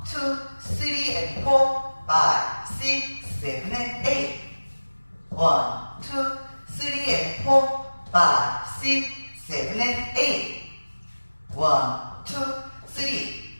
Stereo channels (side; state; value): both; inverted; correlation -1.00